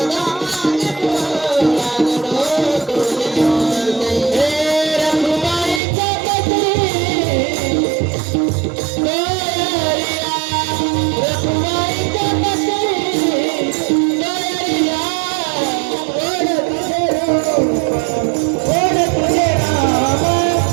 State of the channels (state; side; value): drops out; left; at 5.8 s